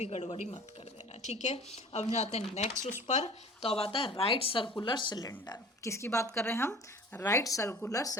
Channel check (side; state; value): both; normal; correlation 0.45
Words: गड़बड़ी मत कर देना, ठीक है। अब जाते हैं नेक्स्ट उस पर। तो अब आता है राइट सर्कुलर सिलेंडर। किसकी बात कर रहे हैं हम, राइट सर्कुलर